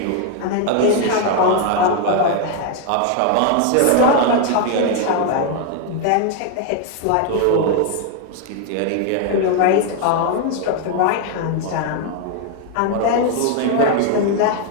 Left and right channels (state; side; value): different; both; correlation 0.00